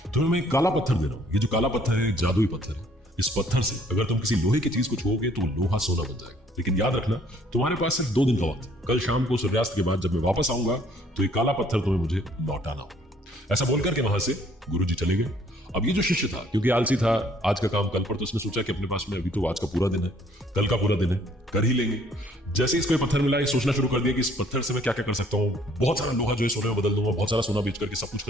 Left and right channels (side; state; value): both; normal; correlation 0.61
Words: तुम्हें मैं एक काला पत्थर दे रहा हूं। ये जो काला पत्थर है एक जादुई पत्थर है। इस पत्थर से अगर तुम किसी लोहे की चीज को छुओगे तो लोहा सोना बन जाएगा। लेकिन याद रखना, तुम्हारे पास सिर्फ 2 दिन का वक्त है। कल शाम को सूर्यास्त के बाद जब मैं वापस आऊंगा तो ये काला पत्थर तुम्हें मुझे लौटाना होगा। ऐसा बोलकर के वहां से गुरुजी चले गए। अब ये जो शिष्य था, क्योंकि आलसी था, आज का काम कल पर, तो उसने सोचा कि अपने पास में अभी तो आज का पूरा दिन है, कल का पूरा दिन है, कर ही लेंगे। जैसे ही इसको ये पत्थर मिला, ये सोचना शुरू कर दिया कि इस पत्थर से मैं क्या क्या कर सकता हूँ। बहुत सारा लोहा जो है सोने में बदल दूंगा, बहुत सारा सोना बेच करके सब कुछ